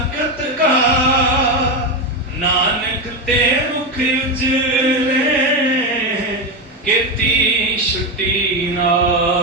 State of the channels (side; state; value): both; normal; correlation 0.12